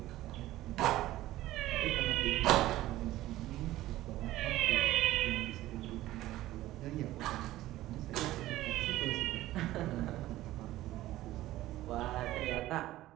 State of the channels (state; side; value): quieter; left; 15.7 dB